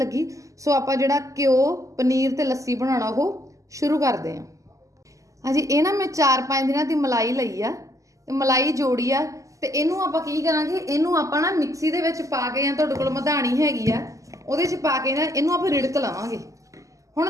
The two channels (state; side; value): late; left; 0.16 ms